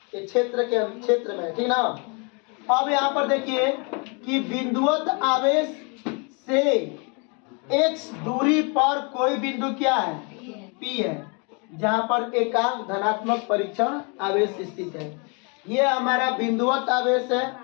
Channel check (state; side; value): quieter; right; 33.9 dB